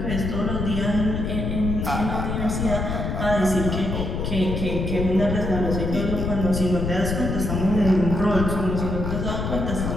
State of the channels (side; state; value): left; noise; rumble, 2 dB below the sound